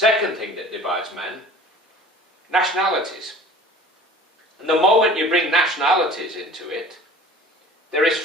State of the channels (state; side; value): normal; both; correlation 0.45